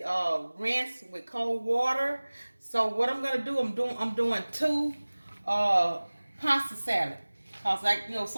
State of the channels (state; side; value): inverted; both; correlation -1.00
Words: rinsed with cold water. So what I'm gonna do, I'm doing two pasta salad. Cause like